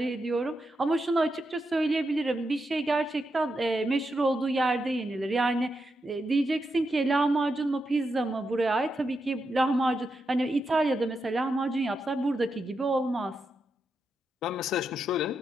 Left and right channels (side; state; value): both; normal; correlation 0.85